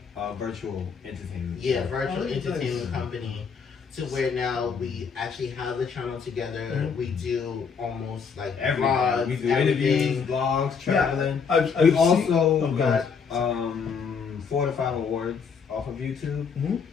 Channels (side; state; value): right; quieter; 5.9 dB